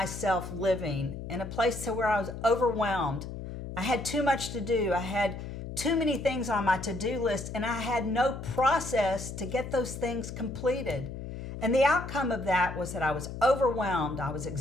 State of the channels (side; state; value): left; noise; hum, 8 dB below the sound